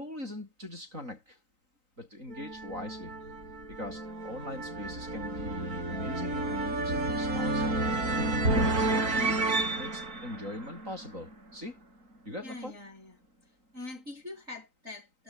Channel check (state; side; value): late; left; 3.9 ms